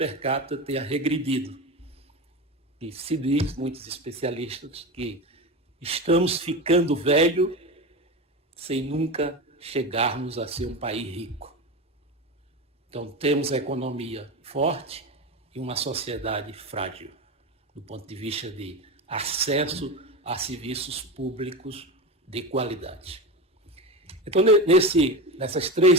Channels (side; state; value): both; normal; correlation 0.22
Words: capita tenha regredido. E se diz, muitos especialistas, que estamos ficando velho sem nunca chegarmos a ser um país rico. Então, temos a economia forte e uma sociedade frágil, do ponto de vista de acesso a serviços públicos de qualidade. Então, nessas